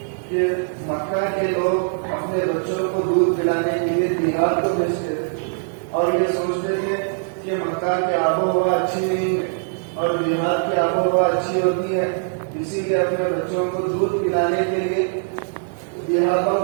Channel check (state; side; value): silent; left; digital silence